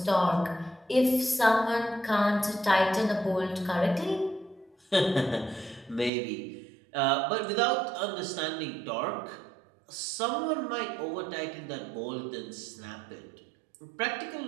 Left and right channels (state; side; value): drops out; left; at 6.1 s